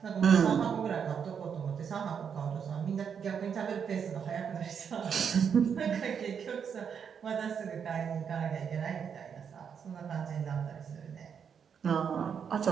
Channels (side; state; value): left; quieter; 7.2 dB